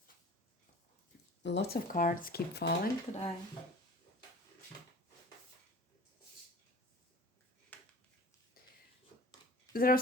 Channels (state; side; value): normal; both; correlation 0.42